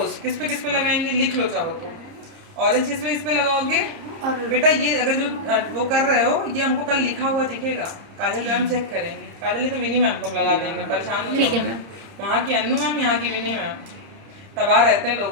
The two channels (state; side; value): late; left; 30 ms